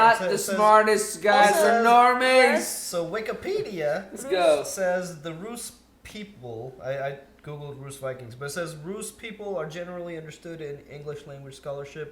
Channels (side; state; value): both; identical; correlation 1.00